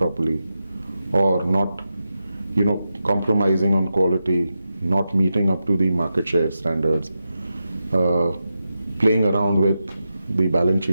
or not, compromising on quality, not meeting up to the market share standards, playing around with the balance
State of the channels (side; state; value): both; inverted; correlation -0.90